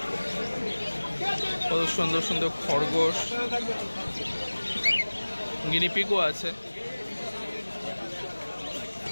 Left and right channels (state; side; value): inverted; both; correlation -1.00